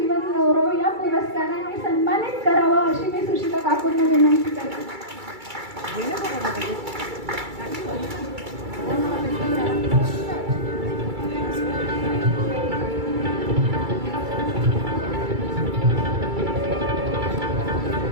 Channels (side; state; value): left; late; 2.3 ms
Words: गौरव या पुरस्काराने सन्मानित करावं अशी मी सुशिला काकूंना विनंती करते.